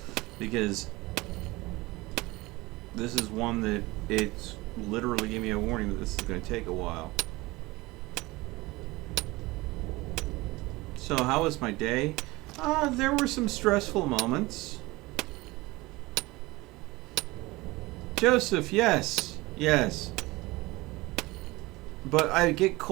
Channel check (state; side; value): quieter; left; 21.4 dB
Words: because this is one that it's literally gave me a warning that this is going to take a while. So how was my day? There were some stressful moments. Joseph, yes, yes. But I get